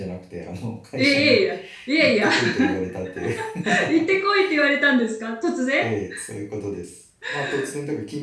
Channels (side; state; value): both; identical; correlation 1.00